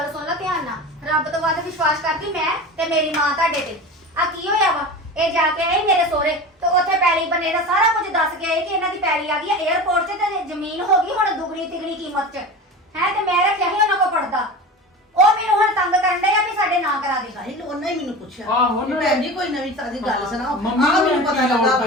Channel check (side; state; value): both; normal; correlation 0.31